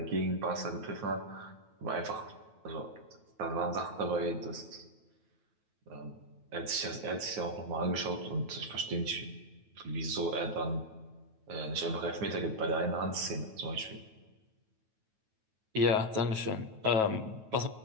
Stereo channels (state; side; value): late; left; 9.3 ms